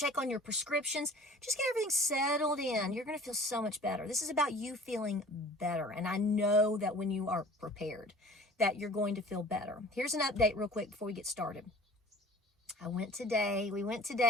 on your prescriptions. Just get everything settled in. You're going to feel so much better. This is about you feeling better. And I know that when you are prepared, that you're going to feel better. Here's an update real quick before we get started. We went to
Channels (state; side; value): normal; both; correlation 0.47